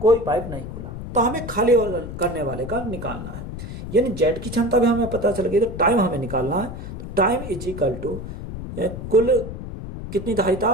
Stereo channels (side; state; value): left; noise; rumble, 9 dB below the sound